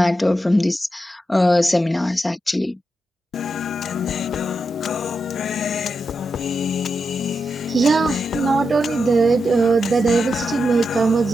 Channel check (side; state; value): both; normal; correlation 0.87